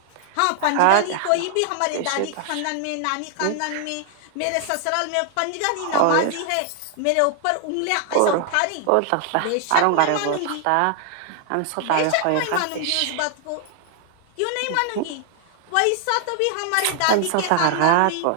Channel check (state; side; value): different; both; correlation 0.00